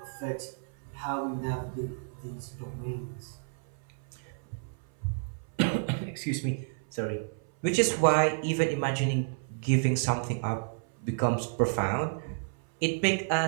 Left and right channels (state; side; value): silent; left; 57 dB below the other